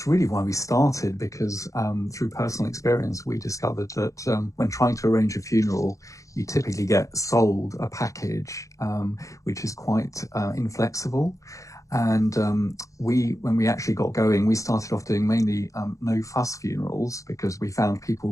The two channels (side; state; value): right; late; 0.16 ms